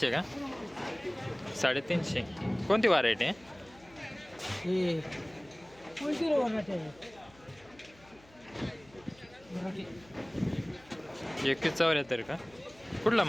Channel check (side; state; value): left; noise; hum, 26 dB below the sound